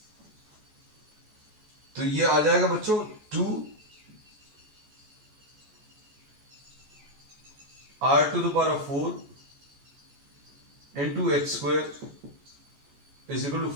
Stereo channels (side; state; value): left; late; 14 ms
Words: तो ये आ जाएगा बच्चों 2 r to the power of 4 into h square is equal to